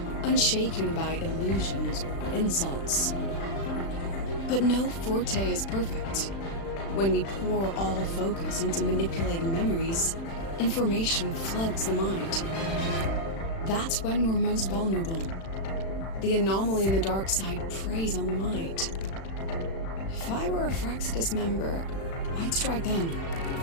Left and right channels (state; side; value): late; right; 36 ms